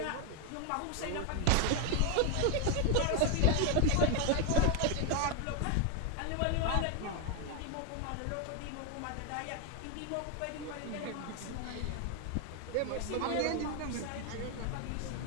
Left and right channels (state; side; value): different; both; correlation 0.01